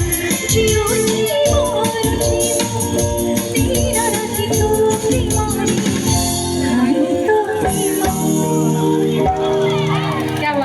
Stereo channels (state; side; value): identical; both; correlation 1.00